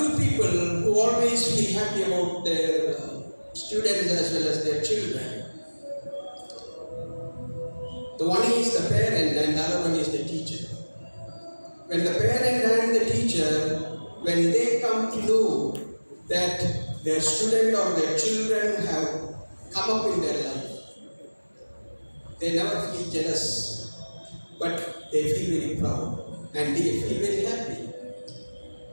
people who always feel happy about their students as well as their children. The one is the parent and the other one is the teacher. When the parent and the teacher, when they come to know that their student or their children have come up in their life, they never feel jealous, but they feel very proud and they feel very happy.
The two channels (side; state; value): both; inverted; correlation -1.00